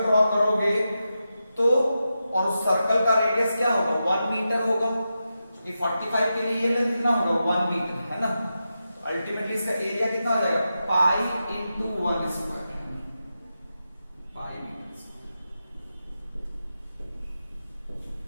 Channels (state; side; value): inverted; both; correlation -0.89